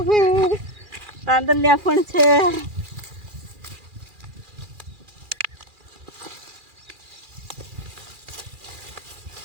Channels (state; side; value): late; left; 2.4 ms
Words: તાંદલિયા પણ છે.